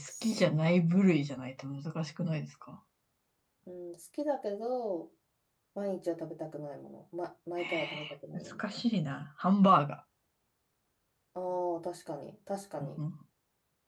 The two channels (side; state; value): both; identical; correlation 1.00